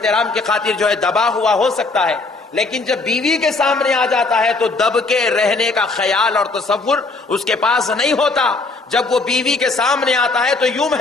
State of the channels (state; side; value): quieter; right; 3.6 dB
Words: کی خاطر جو ہے دبا ہوا ہو سکتا ہے، لیکن جب بیوی کے سامنے آ جاتا ہے تو دب کے رہنے کا خیال اور تصور اس کے پاس نہیں ہوتا۔ جب وہ بیوی کے سامنے آتا ہے تو یوں